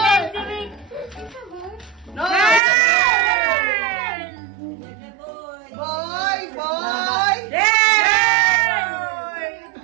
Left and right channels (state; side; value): drops out; left; at 2.6 s